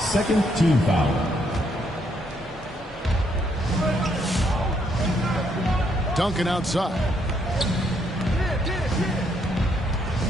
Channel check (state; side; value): normal; both; correlation 0.73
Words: team foul. Duncan outside.